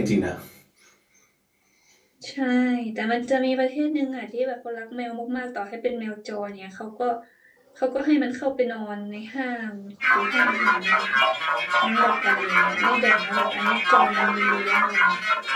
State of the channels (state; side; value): identical; both; correlation 1.00